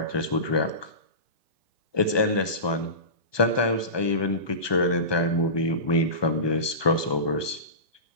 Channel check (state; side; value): late; right; 1.2 ms